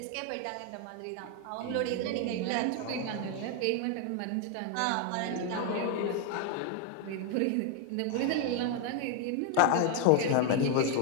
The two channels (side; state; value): both; different; correlation 0.01